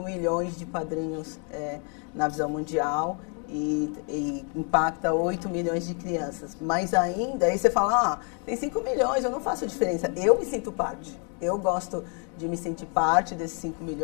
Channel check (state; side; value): quieter; right; 38.5 dB